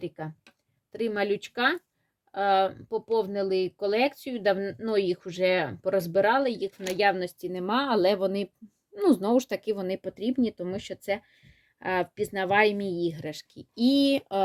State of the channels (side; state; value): both; identical; correlation 1.00